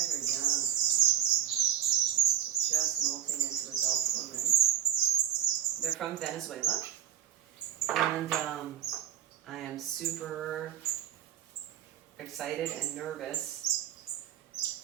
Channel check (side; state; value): left; quieter; 10.7 dB